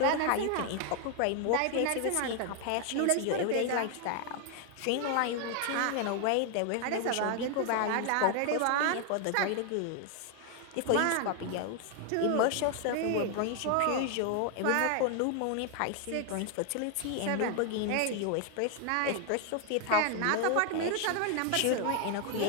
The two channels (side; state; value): both; different; correlation 0.00